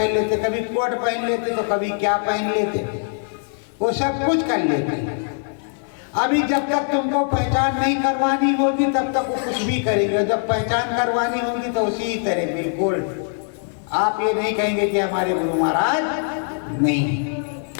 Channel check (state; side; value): silent; right; 59 dB below the other